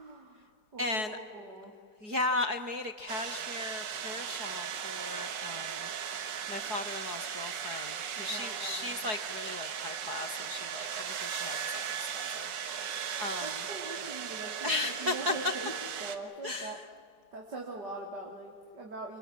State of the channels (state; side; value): late; left; 5.4 ms